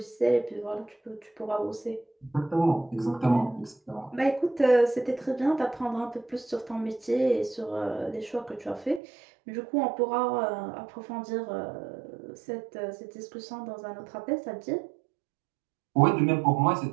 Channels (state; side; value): drops out; left; at 9.0 s